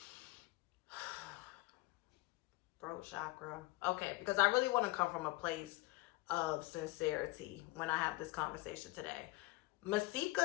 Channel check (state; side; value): quieter; right; 21.1 dB